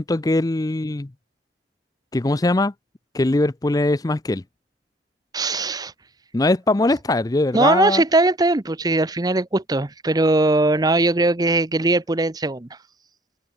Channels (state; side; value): normal; both; correlation 0.57